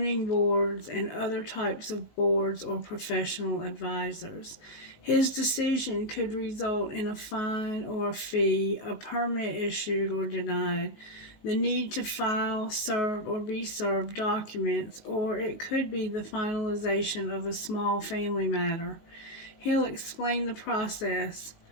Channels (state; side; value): late; right; 19 ms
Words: boards, and other types of boards or professional advisors. His decision could result in a fine or a fee, a permit issued or denied. the need to file, serve, or be served documents, or it could be the finalization of a small family matter. He'll explain the process,